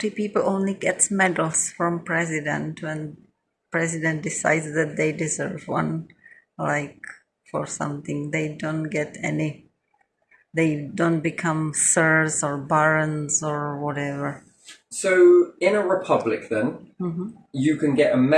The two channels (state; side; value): identical; both; correlation 1.00